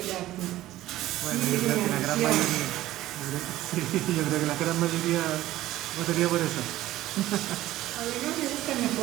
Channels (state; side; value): quieter; left; 15.3 dB